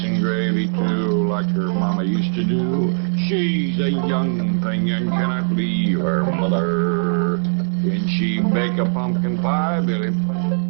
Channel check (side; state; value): left; silent; 66 dB below the other